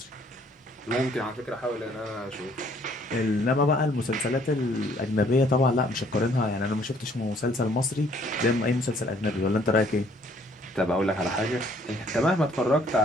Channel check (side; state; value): both; normal; correlation 0.62